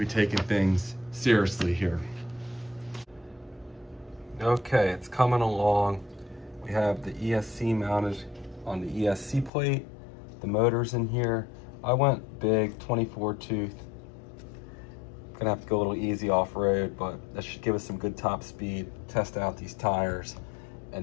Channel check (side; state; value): right; drops out; at 9.5 s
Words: taking things seriously here. Okay, it's coming along. We have the ESC mounted on the ESC plate. The motor's in here. I went big, 24 tooth. Gonna have to go a little easy off-road, but that should give us some good top speed. Test out these tires.